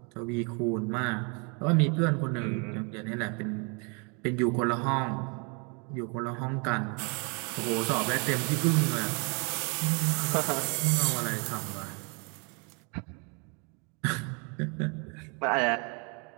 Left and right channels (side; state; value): left; quieter; 33.6 dB